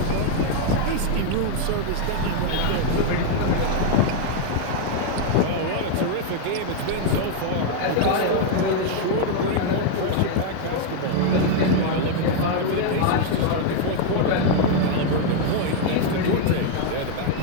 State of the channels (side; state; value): both; different; correlation 0.00